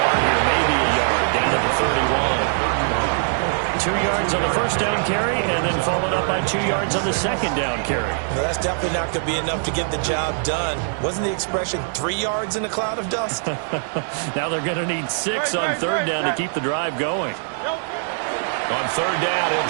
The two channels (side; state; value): left; silent; digital silence